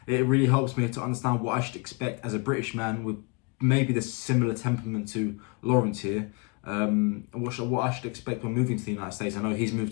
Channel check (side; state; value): right; quieter; 29.9 dB